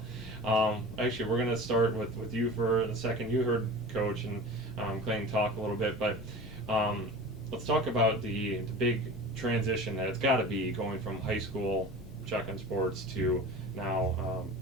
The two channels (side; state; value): both; normal; correlation 0.36